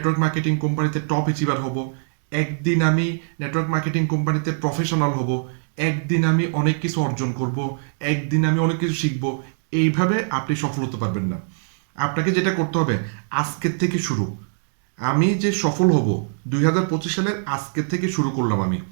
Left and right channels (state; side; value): silent; left; digital silence